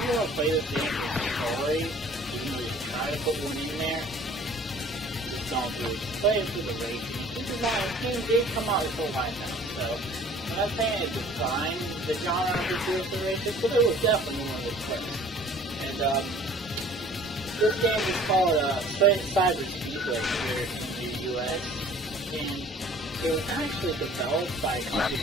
want to play this game for story, even though you try to put one in there, just don't do it. Just play it for the racing. Keep in mind, this game did come out before Wipeout, so I'm not saying it defined the genre of futuristic racing, but it was definitely one of the first. And this game is called Cyber Speedway here in the US, and it was actually developed by a company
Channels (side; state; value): both; normal; correlation 0.50